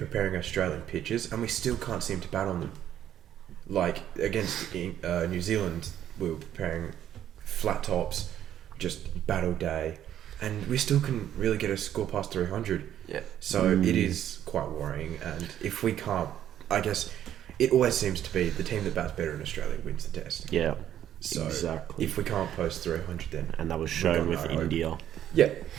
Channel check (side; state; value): left; quieter; 10.9 dB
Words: Australian pitches and we still can't seem to bat on them. Like against New Zealand, we were preparing flat tops, just battle day, and we still couldn't really get a score past 300. Yeah. So it is quite worrying, and if we can't, I guess it always seems to be the team that bats better in Australia wins the test. Yeah. So exactly. if we can't post 300, then and that was shown with India. Yeah,